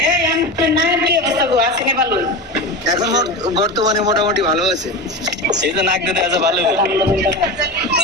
আমি না, কি অবস্থা গো? আসেনি ভালো? এখন বর্তমানে মোটামুটি ভালো আছে এই যে নাক দিতে আছে ভালো হবে।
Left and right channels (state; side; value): normal; both; correlation 0.23